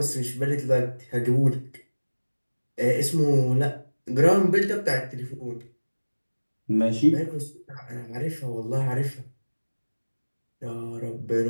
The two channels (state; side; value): inverted; both; correlation -1.00